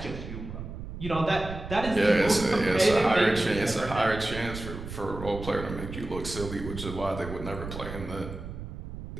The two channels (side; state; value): right; noise; rumble, 9 dB below the sound